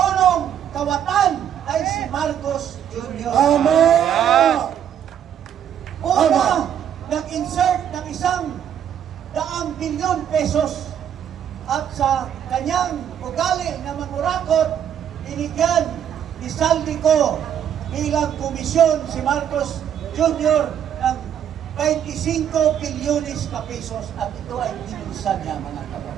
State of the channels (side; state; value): left; quieter; 9.4 dB